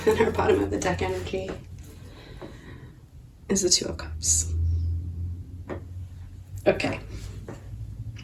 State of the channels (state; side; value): identical; both; correlation 1.00